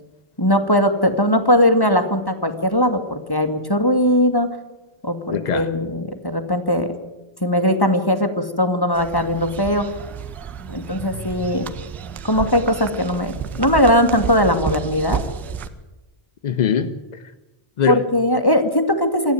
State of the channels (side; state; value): right; late; 1.1 ms